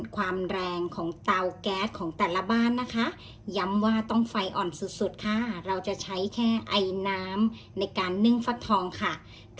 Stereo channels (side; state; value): both; identical; correlation 1.00